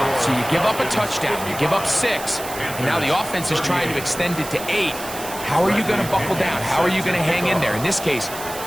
So you give up a touchdown, you give up 6, and now the offense is trying to extend it to 8. How are you going to buckle down? How are you going to hang in there? In this case,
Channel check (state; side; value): noise; right; hiss, 11 dB below the sound